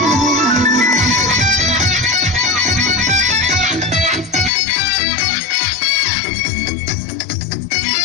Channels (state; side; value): drops out; right; at 4.5 s